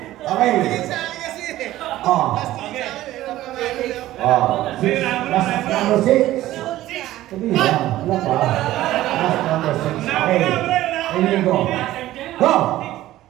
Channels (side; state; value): left; quieter; 15.1 dB